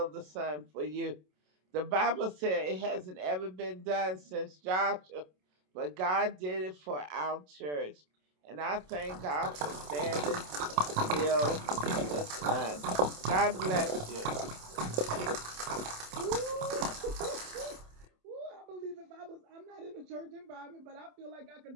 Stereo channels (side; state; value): left; late; 27 ms